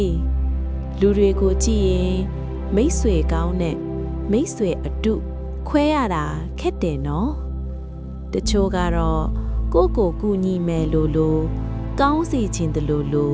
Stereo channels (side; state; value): both; identical; correlation 1.00